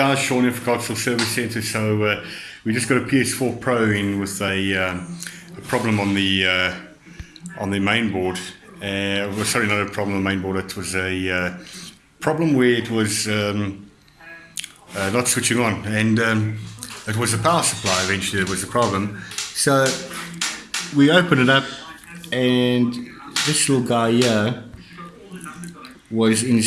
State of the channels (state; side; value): identical; both; correlation 1.00